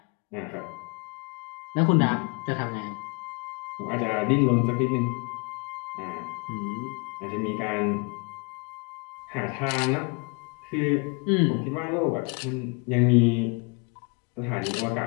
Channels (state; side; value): quieter; right; 33.0 dB